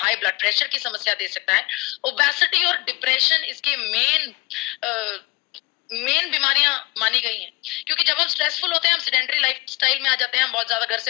ब्लड प्रेशर की समस्या दे सकता है, ओबेसिटी और डिप्रेशन इसके मेन बीमारियां मानी गई हैं। क्योंकि जब हम स्ट्रेसफुल होते हैं, हम सेडेंटरी लाइफस्टाइल में आ जाते हैं, हम बहुत ज्यादा घर से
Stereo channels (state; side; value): quieter; right; 22.9 dB